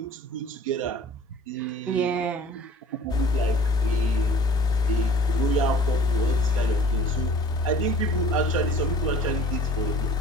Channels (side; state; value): both; normal; correlation 0.48